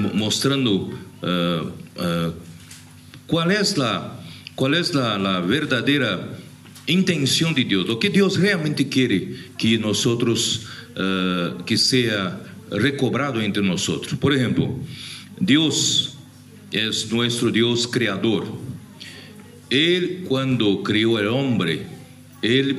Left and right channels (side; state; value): both; identical; correlation 1.00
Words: mostrando cuál es la verdadera intención de Dios, lo que Dios realmente quiere que nosotros, que sea recobrado entre nosotros. Por ejemplo, Dios es nuestro Dios creador. Él, cuando creó al hombre, él